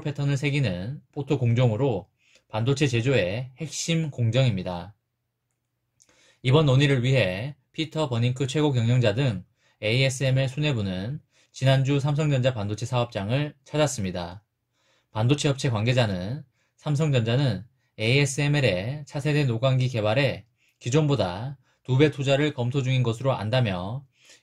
패턴을 새기는 포토 공정으로 반도체 제조의 핵심 공정입니다. 이번 논의를 위해 피터 버닝크 최고 경영자 등 ASML 수뇌부는 지난주 삼성전자 반도체 사업장을 찾았습니다. 반도체 업체 관계자는 삼성전자는 ASML의 차세대 노광기 개발에 기존보다 2배 투자를 검토 중인 것으로 안다며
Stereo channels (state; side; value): identical; both; correlation 1.00